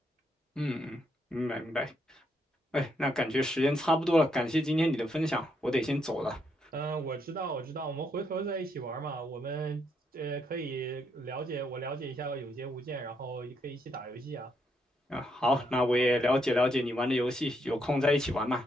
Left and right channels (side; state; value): both; normal; correlation 0.77